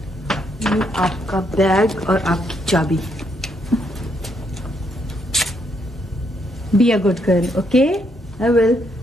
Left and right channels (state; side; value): normal; both; correlation 0.75